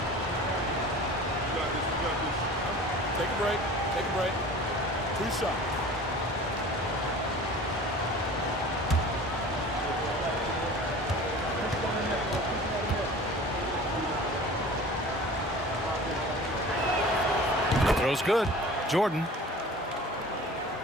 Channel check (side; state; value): both; normal; correlation 0.41